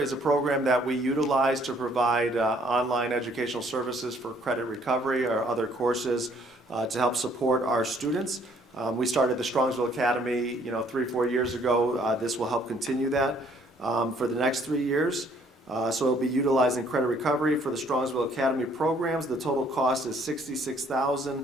a program that we utilize to provide online educational services for credit recovery or other courses to help support our students. We started the Strongvsville Academy, 3-4 years ago. This will help continue that for the next 3 years. So it'll be utilizing credit recovery for the Strongvsville Academy programs. The total cost is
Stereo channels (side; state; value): both; normal; correlation 0.62